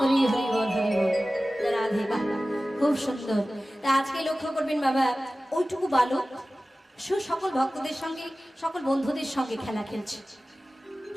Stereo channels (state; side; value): normal; both; correlation 0.96